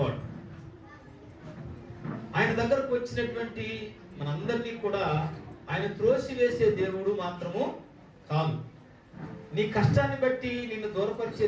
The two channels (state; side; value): identical; both; correlation 1.00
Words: ఆయన దగ్గరకు వచ్చినటువంటి మనందరినీ కూడా ఆయన త్రోసివేసే దేవుడు మాత్రము కాదు. నీ కష్టాన్ని బట్టి నిన్ను దూరపరిచే